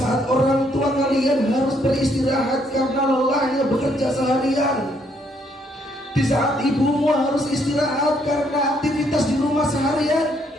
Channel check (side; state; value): both; normal; correlation 0.70